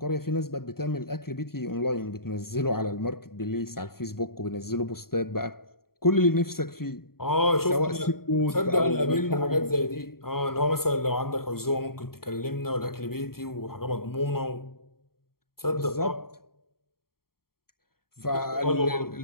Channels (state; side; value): late; right; 0.93 ms